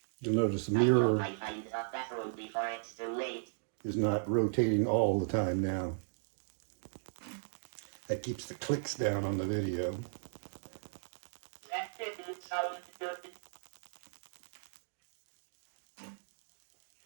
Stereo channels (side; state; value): left; silent; digital silence